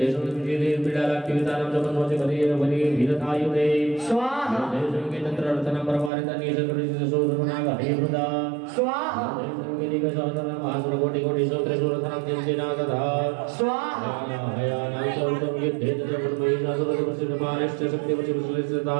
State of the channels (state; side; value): drops out; left; at 6.1 s